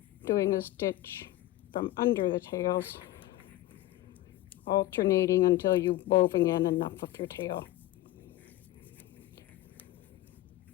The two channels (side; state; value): right; quieter; 15.6 dB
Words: doing a stitch from under the tails, alternating until you've woven in enough of your tail.